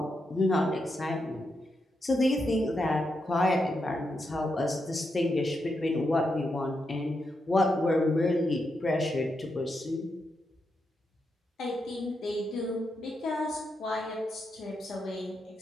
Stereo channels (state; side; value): normal; both; correlation 0.84